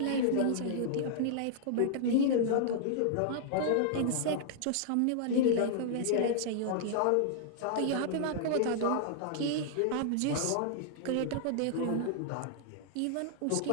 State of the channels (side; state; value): both; different; correlation -0.01